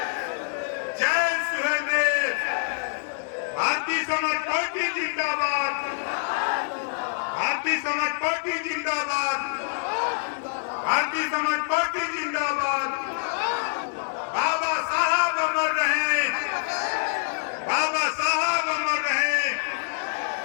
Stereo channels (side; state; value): right; silent; digital silence